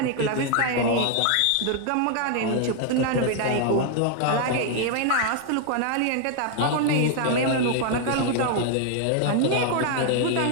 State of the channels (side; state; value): both; different; correlation 0.00